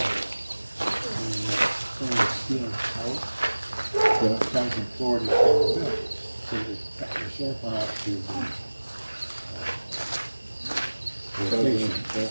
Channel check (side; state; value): both; inverted; correlation -1.00